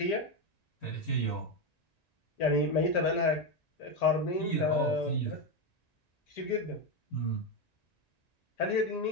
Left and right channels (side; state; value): right; late; 1.9 ms